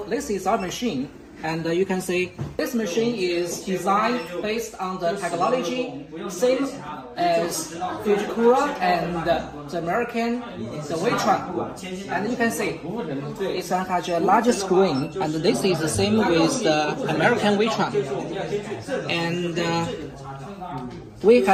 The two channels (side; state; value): both; identical; correlation 1.00